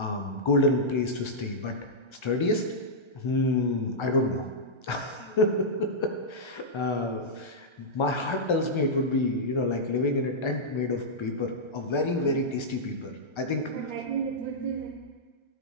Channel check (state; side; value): late; right; 1.3 ms